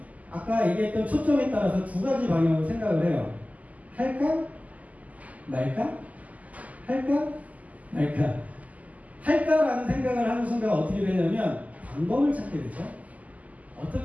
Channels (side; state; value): left; late; 0.075 ms